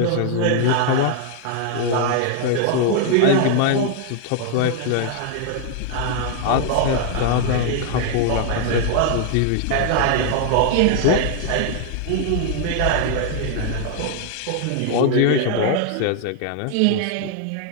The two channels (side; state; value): both; different; correlation 0.00